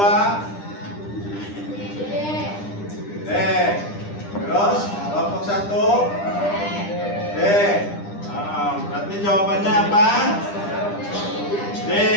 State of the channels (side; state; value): right; late; 9.9 ms